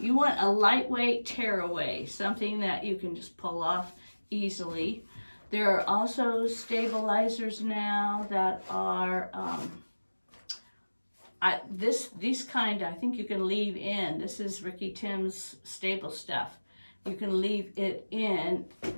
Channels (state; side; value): inverted; both; correlation -1.00